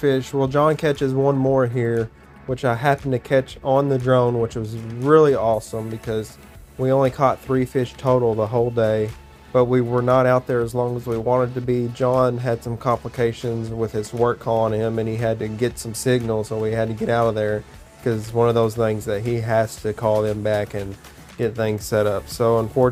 Well, John catches one more here, which I happened to catch on the drone, which was really awesome because we only caught 3 fish total the whole day, but we were not out there as long as we wanted to be. John had some complications with his work calling him, and he had to get some signal, so we had to get out of there because it's one of those things that he has to call them back and get things set up. So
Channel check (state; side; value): identical; both; correlation 1.00